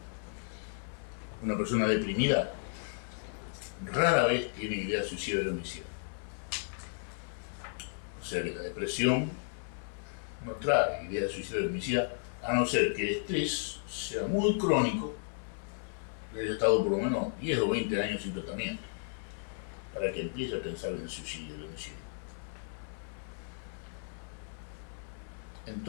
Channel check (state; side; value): silent; right; 55 dB below the other